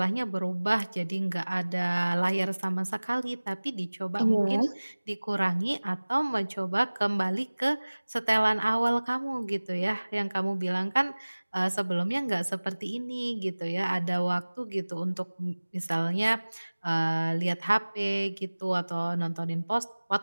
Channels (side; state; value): both; inverted; correlation -1.00